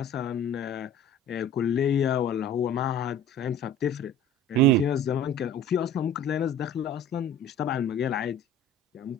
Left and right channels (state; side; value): normal; both; correlation 0.43